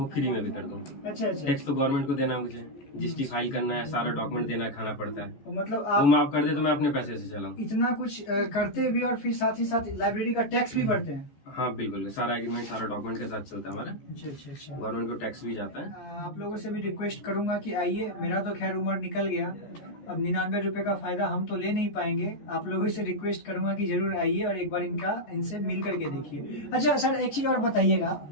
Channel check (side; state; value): right; late; 14 ms